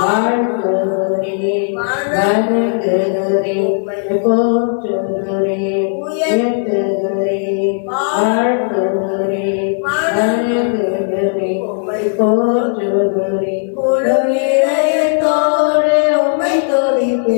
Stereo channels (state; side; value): silent; right; digital silence